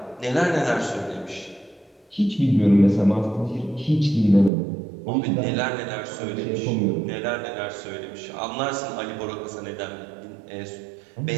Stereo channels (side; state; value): left; drops out; at 4.5 s